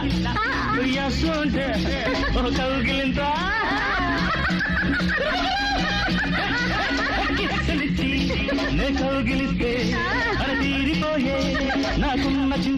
ఉయ్యాసుంటే ఓ కౌగిలింత కిచ్చలిచ్చి నే కౌగిలిస్తే అర తీరిపోయే నాకున్న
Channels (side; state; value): both; identical; correlation 1.00